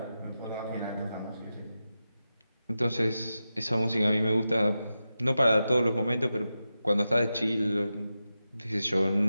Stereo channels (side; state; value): both; inverted; correlation -0.91